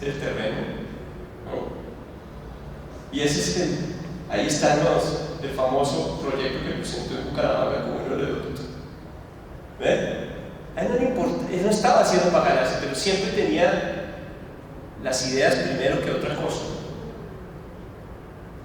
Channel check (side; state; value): both; identical; correlation 1.00